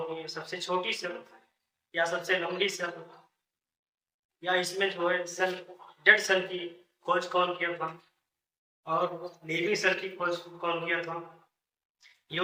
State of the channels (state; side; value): identical; both; correlation 1.00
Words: है, सबसे छोटी सेल या सबसे लंबी सेल, या इसमें जो है सेल डेड सेल की खोज कौन किया था और लिविंग सेल की खोज कौन किया था,